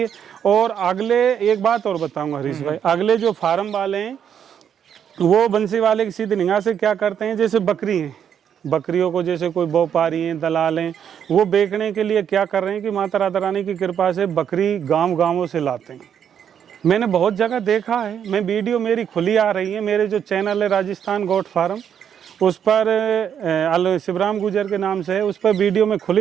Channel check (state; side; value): quieter; left; 8.6 dB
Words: है। और अगले एक बात और बताऊंगा हरीश भाई, अगले जो फार्म वाले हैं वो बंसी वाले की सीधी निगाह से क्या करते हैं, जैसे बकरी है, बकरियों को जैसे कोई व्यापारी हैं, दलाल हैं, वो बेचने के लिए क्या कर रहे हैं कि माता राधा रानी की कृपा से बकरी गांवों से लाते हैं। मैंने बहुत जगह देखा है, मैं वीडियो मेरी खुली आ रही है, मेरे जो चैनल है राजस्थान गोट फार्म, उस पर शिवराम गुजर के नाम से है, उस पर वीडियो में